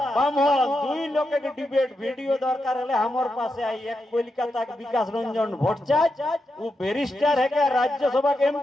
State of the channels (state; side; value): normal; both; correlation 0.86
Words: ब्राह्मण दुई लोग के डिबेट वीडियो दरकार हले हमर पासे आई। एक कोलकाता के विकास रंजन भट्टाचार्य वो बैरिस्टर है के राज्यसभा के